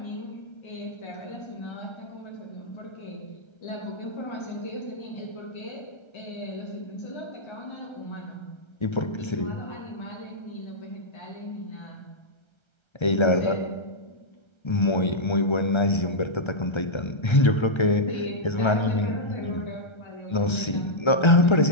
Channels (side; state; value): right; late; 1.3 ms